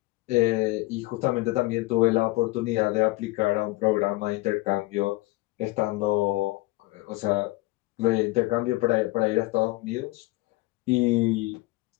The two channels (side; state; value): right; quieter; 20.6 dB